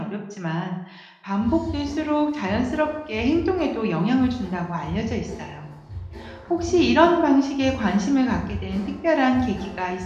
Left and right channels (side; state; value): both; identical; correlation 1.00